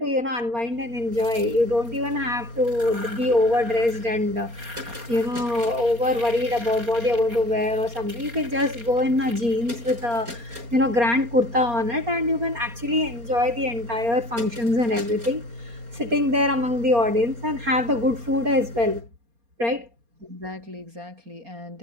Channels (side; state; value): left; late; 4.3 ms